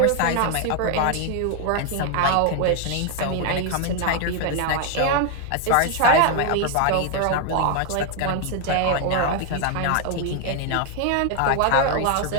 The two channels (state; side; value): different; both; correlation 0.00